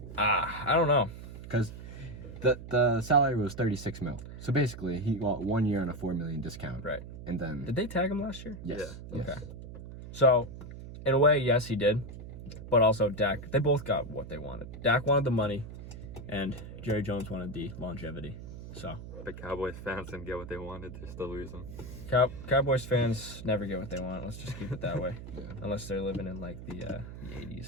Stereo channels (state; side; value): noise; right; hum, 12 dB below the sound